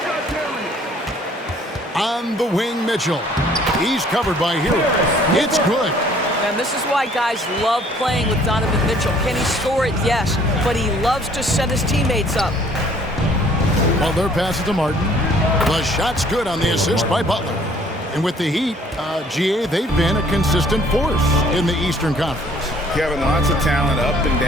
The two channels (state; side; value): normal; both; correlation 0.58